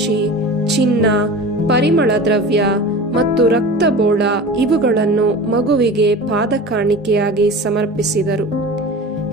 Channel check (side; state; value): both; normal; correlation 0.34